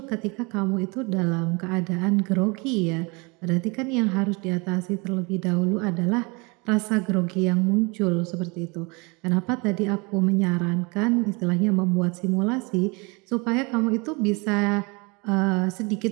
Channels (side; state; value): left; quieter; 28.6 dB